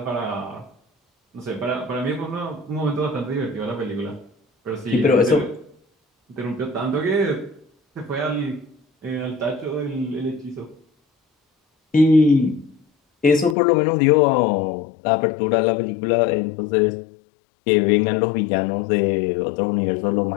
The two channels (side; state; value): right; drops out; at 13.6 s